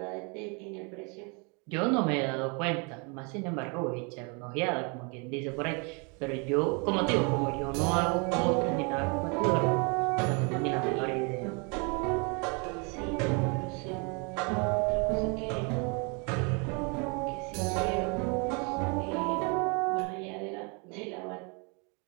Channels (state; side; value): quieter; left; 32.9 dB